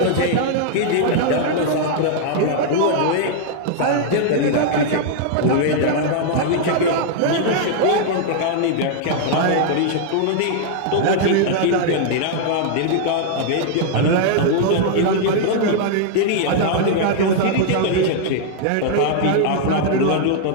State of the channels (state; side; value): different; both; correlation -0.01